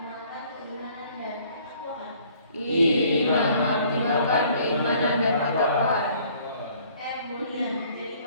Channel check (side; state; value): both; inverted; correlation -0.58